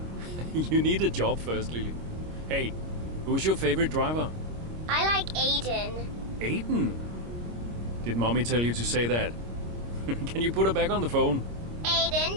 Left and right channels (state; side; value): late; left; 26 ms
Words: You need a job first, Lily. Hey, who's your favorite driver? I like Aiden. Aiden? Did Mommy tell you to say that? Can you put her back on the phone?